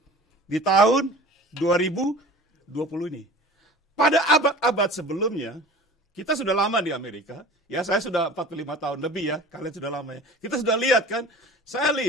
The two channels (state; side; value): normal; both; correlation 0.42